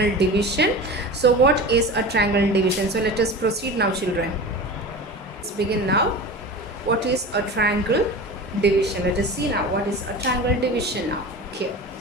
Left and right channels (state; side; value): normal; both; correlation 0.32